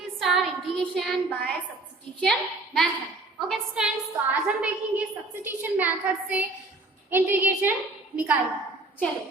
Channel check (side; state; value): left; quieter; 3.0 dB